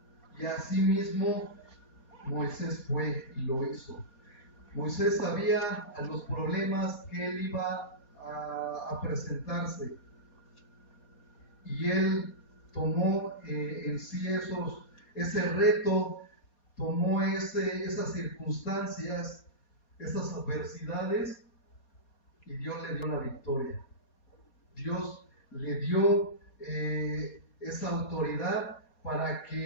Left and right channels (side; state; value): right; late; 4.2 ms